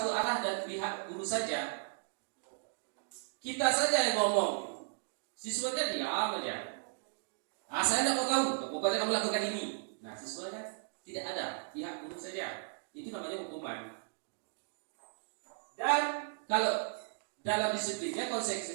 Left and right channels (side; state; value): left; silent; digital silence